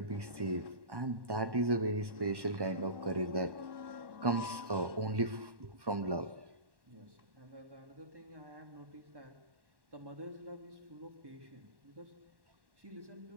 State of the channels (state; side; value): late; left; 1.1 ms